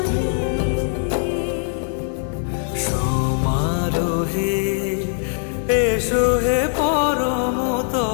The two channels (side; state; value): right; silent; 65 dB below the other